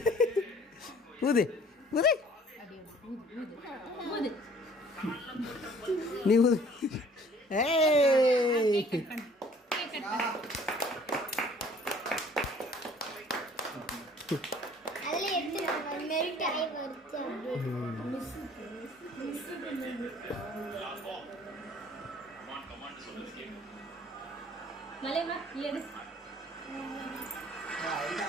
ஊது ஊது நீ ஊது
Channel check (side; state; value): both; normal; correlation 0.54